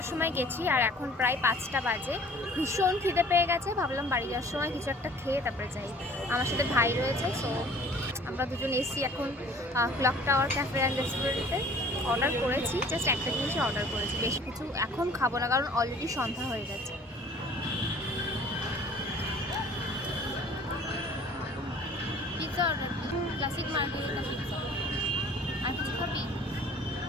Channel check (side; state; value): both; normal; correlation 0.50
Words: সময় গেছি আর এখন প্রায় 5টা বাজে। ভীষণ খিদে পেয়ে গেছে, ভাবলাম বাড়ি যাওয়ার সময় কিছু একটা খেয়ে তারপরে যাই। আমার সাথে ভাই রয়েছে, সো আমরা দুজন এসছি এখন ক্লক টাওয়ার ক্যাফে অ্যান্ড রেস্টুরেন্টে। অর্ডার করেছি, জাস্ট একটা জিনিসই অর্ডার করেছি, বেশি কিছু এখন খাবো না কারণ অলরেডি সন্ধ্যা হয়ে গেছে। পিৎজা অর্ডার দিই, ক্লাসিক মার্গারিটা পিৎজা। আর কিছু খাবি?